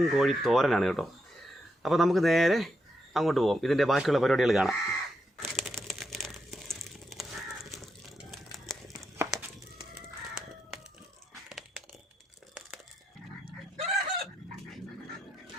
കോഴി തോരനാണ് കേട്ടോ. അപ്പോൾ നമുക്ക് നേരെ അങ്ങോട്ട് പോകാം, ഇതിൻ്റെ ബാക്കിയുള്ള പരിപാടികൾ കാണാം.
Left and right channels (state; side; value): normal; both; correlation 0.83